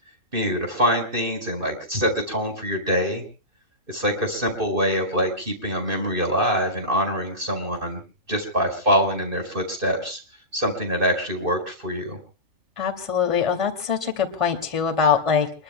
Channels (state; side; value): late; left; 2.5 ms